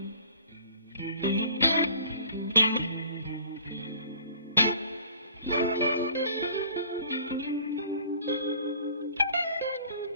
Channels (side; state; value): both; inverted; correlation -0.51